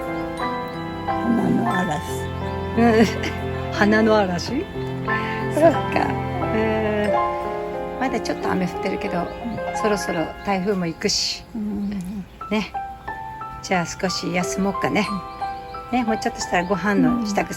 花の嵐。花の嵐。そっか。まだちょっと雨降ってるけど、そろそろ台風も行くし。ね。じゃあ少し休もうかね。ね、もうちょっとしたらご飯の支度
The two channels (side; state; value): both; identical; correlation 1.00